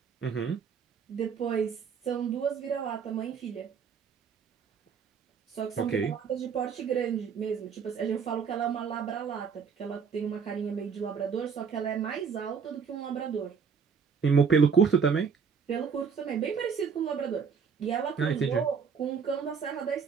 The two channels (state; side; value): quieter; left; 6.3 dB